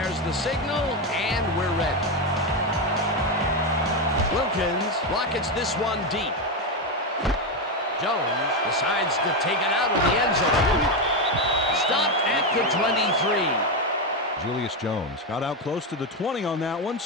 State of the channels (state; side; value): normal; both; correlation 0.09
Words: the signal, and we're ready. Wilkins rockets this one deep. Jones decides to take it out of the end zone. Stopped at the 23. Julius Jones got out close to the 20 on that one,